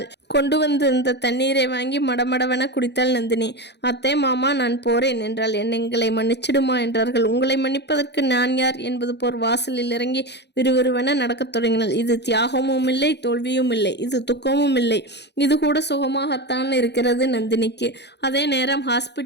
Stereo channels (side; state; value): right; late; 0.50 ms